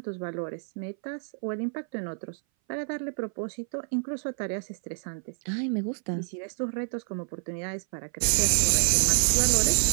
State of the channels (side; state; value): left; silent; 57 dB below the other